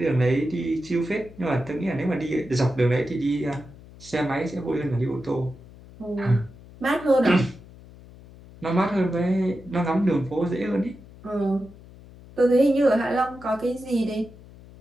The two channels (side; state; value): left; noise; hum, 20 dB below the sound